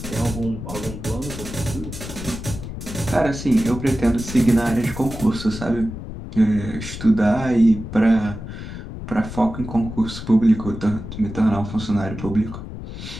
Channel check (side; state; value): left; noise; rumble, 9 dB below the sound